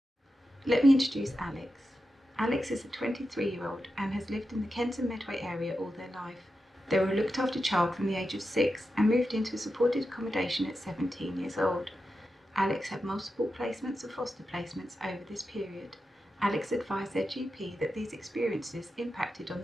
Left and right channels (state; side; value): normal; both; correlation 0.90